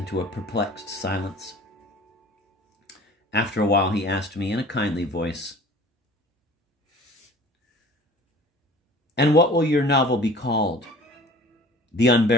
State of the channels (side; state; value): both; normal; correlation 0.46